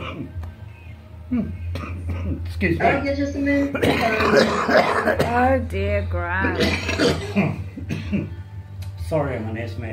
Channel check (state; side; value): identical; both; correlation 1.00